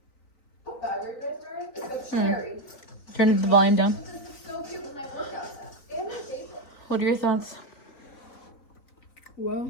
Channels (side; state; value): right; late; 3.9 ms